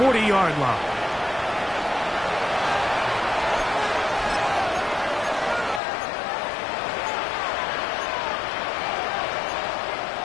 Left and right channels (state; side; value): drops out; right; at 5.8 s